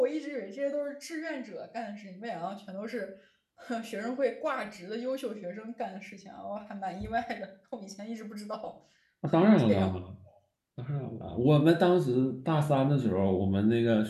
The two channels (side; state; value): both; identical; correlation 1.00